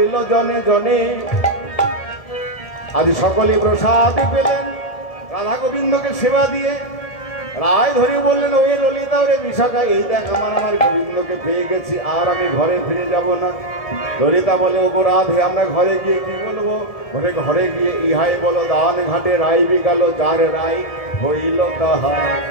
জনে জনে, আজ সকলে প্রসাদ পেলেন রাধা গোবিন্দকে সেবা দিয়ে। রায় ধরে বললেন, ওই ললিতা ওরে বিশাখা, এই দেখ আমার গোবিন্দকে পেয়ে গেছি, আর আমি ঘরে ফিরে যাব না। ললিতা বলে, ওগো রাধে, আমরা ঘরে গিয়ে কি বলবো? ঘরে গিয়ে ইহাই বলো, দান ঘাটে রায় বিকাল, যার রায় হইল তাহা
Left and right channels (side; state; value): right; late; 1.7 ms